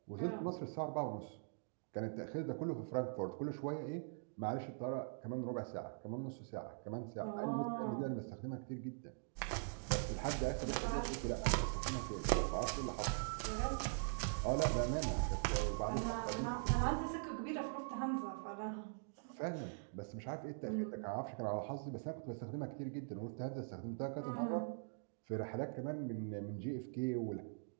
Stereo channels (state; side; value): silent; left; digital silence